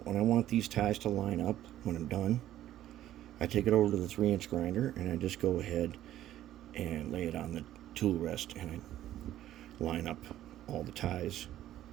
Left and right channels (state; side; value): quieter; left; 12.9 dB